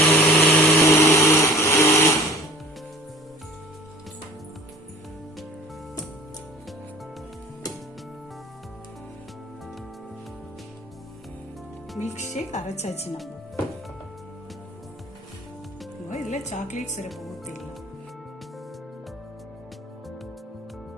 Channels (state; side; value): normal; both; correlation 0.45